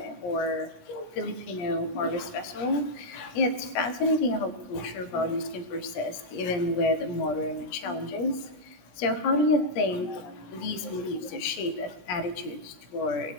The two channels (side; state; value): right; late; 17 ms